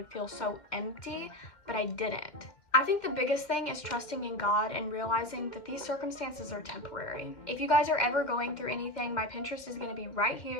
feel so empty, but I didn't. I think the biggest thing is trusting in God and realizing that these circumstances are temporary. If you guys are ever going through anything, my Pinterest is going to be right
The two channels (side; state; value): right; late; 2.1 ms